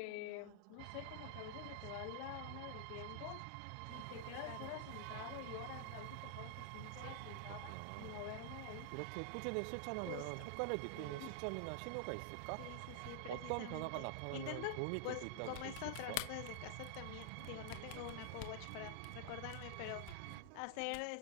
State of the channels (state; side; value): different; both; correlation -0.01